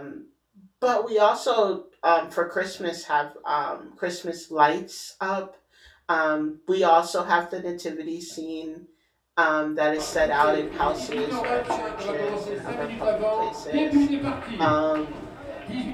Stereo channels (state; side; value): identical; both; correlation 1.00